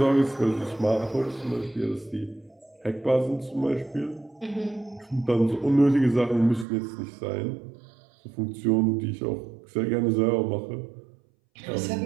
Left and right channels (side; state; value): left; drops out; at 6.7 s